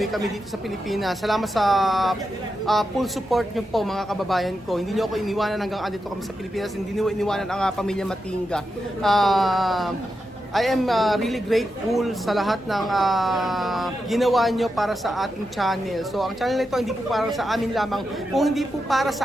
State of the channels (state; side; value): normal; both; correlation 0.87